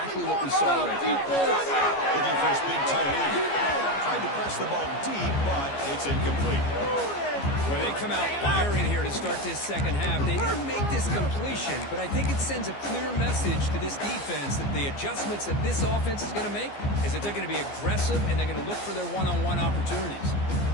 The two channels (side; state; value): right; late; 15 ms